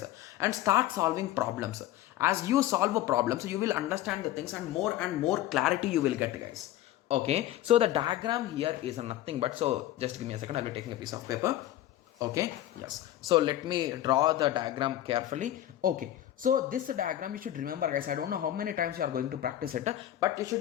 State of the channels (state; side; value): quieter; right; 13.4 dB